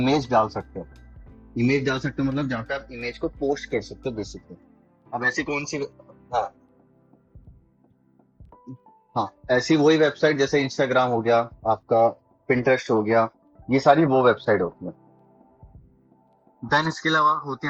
डाल सकते हो। इमेज डाल सकते हो मतलब जहाँ पे आप इमेज को पोस्ट कर सकते हो बेसिकली। अब ऐसी कौन सी, हाँ हाँ, ऐसी वही वेबसाइट जैसे इंस्टाग्राम हो गया आपका, पिंटरेस्ट हो गया, ये सारी वो वेबसाइट होती है। देन इसके अलावा होती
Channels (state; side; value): identical; both; correlation 1.00